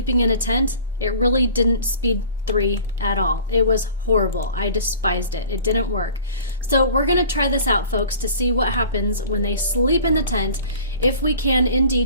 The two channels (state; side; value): inverted; both; correlation -0.44